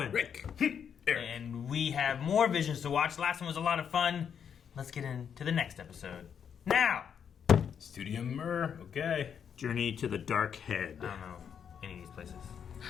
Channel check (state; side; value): quieter; right; 7.7 dB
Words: Rick. And we have more visions to watch. Last one was a lot of fun. Let's get into the next episode. Now! Studio Mir. Okay. Journey to the Dark Head. I don't know any of these places.